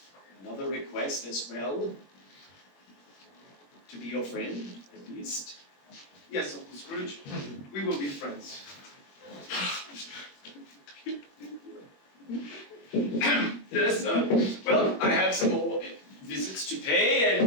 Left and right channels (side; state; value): right; late; 21 ms